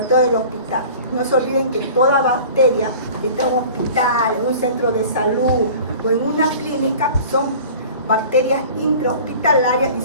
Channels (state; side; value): inverted; both; correlation -0.43